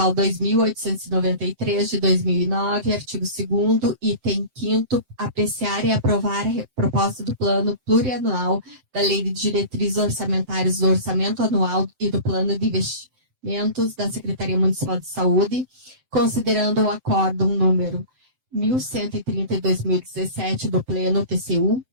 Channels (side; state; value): left; late; 7.8 ms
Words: 2.893 de 2009, artigo 2º, item 5º, apreciar e aprovar a proposta do Plano Plurianual da Lei de Diretrizes Orçamentárias do Orçamento Anual e do Plano de Investimentos da Secretaria Municipal de Saúde, considerando o acórdão número 1130 de 2017 do Pleno TCU,